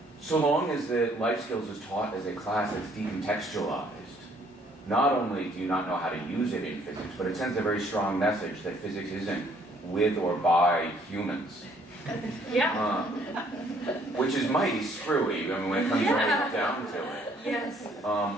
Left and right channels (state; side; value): normal; both; correlation 0.63